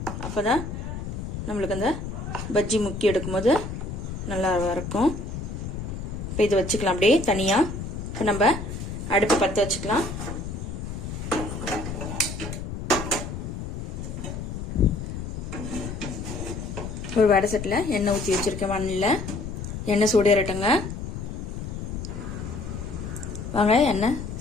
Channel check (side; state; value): left; noise; rumble, 6 dB below the sound